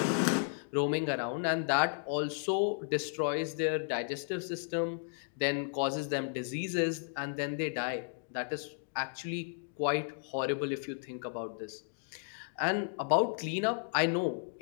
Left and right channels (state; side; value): silent; right; digital silence